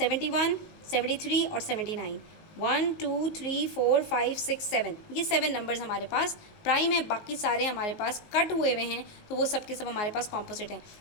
73 और 79। 1, 2, 3, 4, 5, 6, 7, ये 7 नंबर्स हमारे पास प्राइम है। बाकी सारे हमारे पास कट हुए हुए हैं, तो वो सब के सब हमारे पास कॉम्पोजिट हैं।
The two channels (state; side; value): late; right; 19 ms